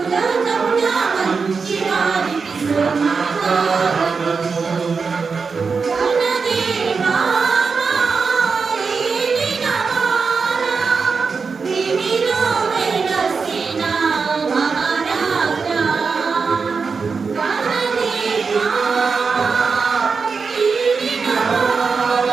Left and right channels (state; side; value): quieter; left; 5.0 dB